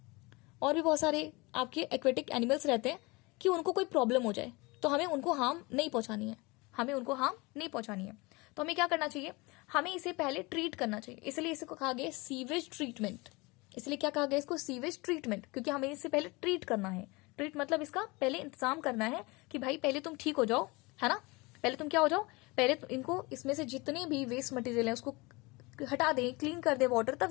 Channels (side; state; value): right; quieter; 25.0 dB